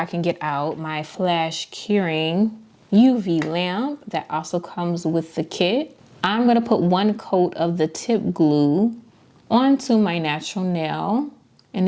can get out my flash curing UV lamp that also comes with the kit. I'm going to put 1 coat of the tip glue onto my natural nail, and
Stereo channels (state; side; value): identical; both; correlation 1.00